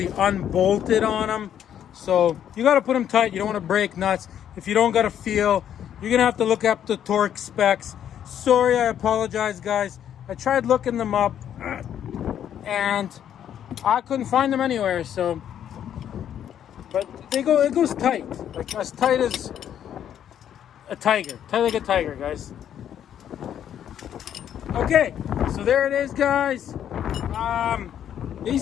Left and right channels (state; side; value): quieter; right; 9.8 dB